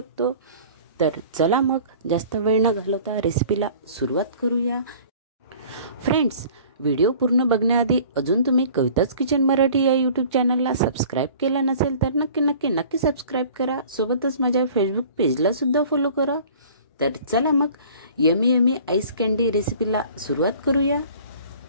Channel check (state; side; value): inverted; both; correlation -0.48